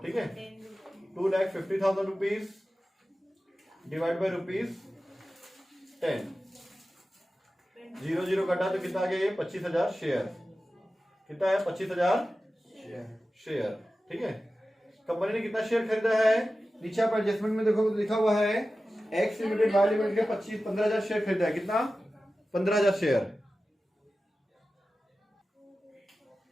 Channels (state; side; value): normal; both; correlation 0.94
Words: ठीक है। 2,50,000 रुपीज डिवाइड बाई ₹10, 0 कटा तो कितना आ गया? ये 25,000 शेयर। कितना है? 25,000 शेयर, ठीक है। कंपनी ने कितना शेयर खरीदा है? नीचे आप एडजस्टमेंट में देखो तो लिखा हुआ है एक्स लिमिटेड वाई लिमिटेड के 15,000 शेयर खरीदा है। कितना? 15,000 शेयर।